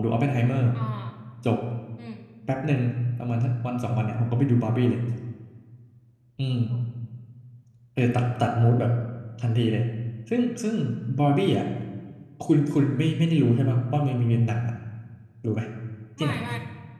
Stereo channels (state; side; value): identical; both; correlation 1.00